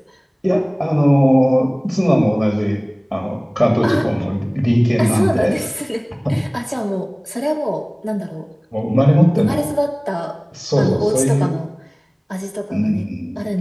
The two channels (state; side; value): identical; both; correlation 1.00